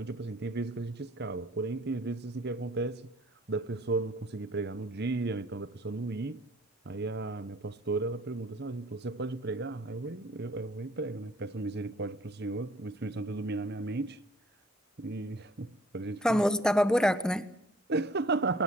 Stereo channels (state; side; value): normal; both; correlation 0.55